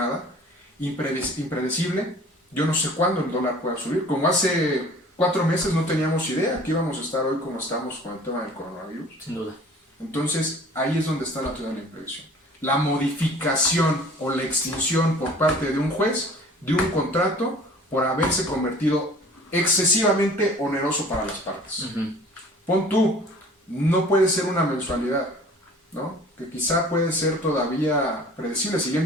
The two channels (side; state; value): both; normal; correlation 0.48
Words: impredecible, yo no sé cuándo el dólar pueda subir, como hace 4 meses no teníamos idea que íbamos a estar hoy como estamos con el tema del coronavirus. Sin duda. Entonces ahí es donde está la teoría de la imprevisión. La modificación o la extinción por parte de un juez de un contrato por haberse convertido excesivamente oneroso para las partes. Pon tú, no puede ser una mensualidad, ¿no? Que quizá puede ser todavía predecible,